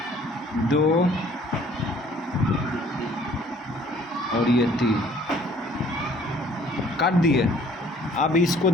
2, और ये 3 काट दिए। अब इसको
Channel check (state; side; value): normal; both; correlation 0.56